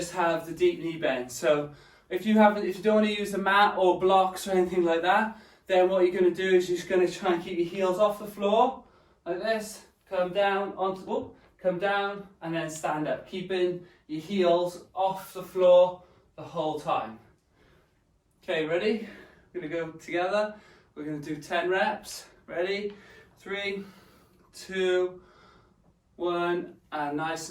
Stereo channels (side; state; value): both; identical; correlation 1.00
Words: have the deep knee bend. So if you don't want to use the mat or blocks or anything like that, then what you're going to do is you're just going to try and keep your heels off the floor like this. Come down come down and then stand up, keeping your heels off the floor the whole time. Okay, ready? We're going to go together. We're going to do 10 reps. Ready? 3, 2, 1, and nice